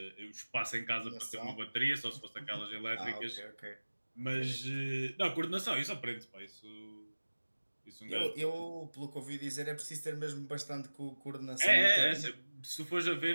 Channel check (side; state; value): both; inverted; correlation -1.00